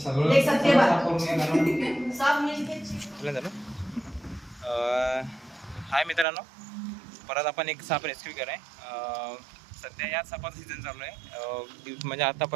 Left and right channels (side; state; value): left; drops out; at 6.2 s